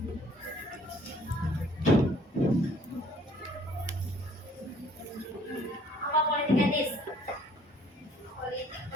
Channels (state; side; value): normal; both; correlation 0.58